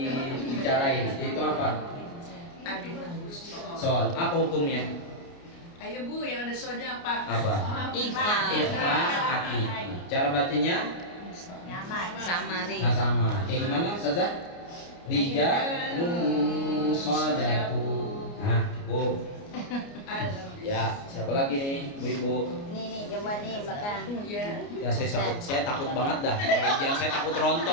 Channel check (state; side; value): late; right; 29 ms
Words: bicarain. Itu apa? Soal apa hukumnya? Ayo Bu, yang ada soalnya apa? Apa? Ikhfa. Ikhfa hakiki. Cara bacanya? Samari. Nah, sama. Gimana Ustazah? Rijalun sadaqu. Nah, cukup. Ya, siapa lagi nih, Bu-ibu? Nih, coba nih belakang. Ya saya takut banget dah. Kalau saya takut